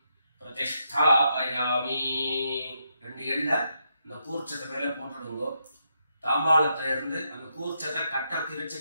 प्रतिष्ठापयामि. 2 எள்ள இந்த கூர்ச்சத்தை மேல போட்டுடுங்க. தாம்பாளத்துல இருந்து அந்த கூர்ச்சத்தை கட்டை பிரிச்சு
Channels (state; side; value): inverted; both; correlation -0.80